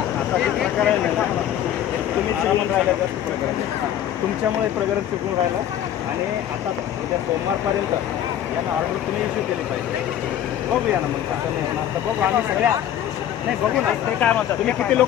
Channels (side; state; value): right; quieter; 10.9 dB